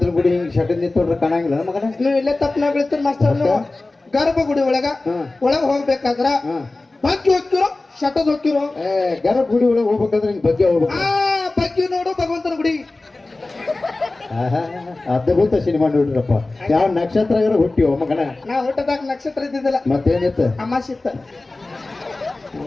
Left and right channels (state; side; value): quieter; right; 3.1 dB